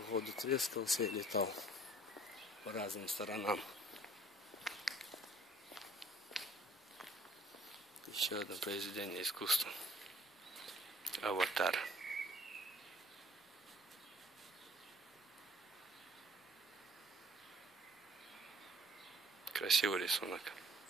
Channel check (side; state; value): both; normal; correlation 0.55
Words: трескался и летал по разным сторонам. Еще одно произведение искусства. Аватар. Красивый рисунок.